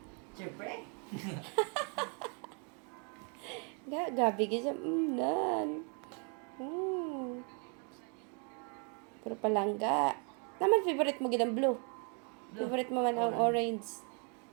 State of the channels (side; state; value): left; quieter; 37.8 dB